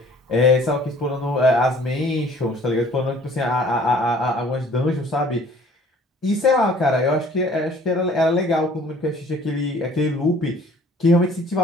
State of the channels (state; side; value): normal; both; correlation 0.53